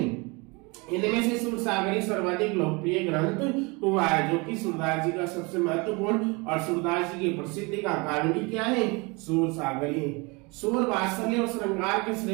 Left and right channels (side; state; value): left; quieter; 27.6 dB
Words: इनमें से सूर सागर ही सर्वाधिक लोकप्रिय ग्रंथ हुआ है, जो कि सूरदास जी का सबसे महत्वपूर्ण और सूरदास जी की प्रसिद्धि का कारण भी क्या है? सूर सागर ही। सूर वात्सल्य और श्रृंगार के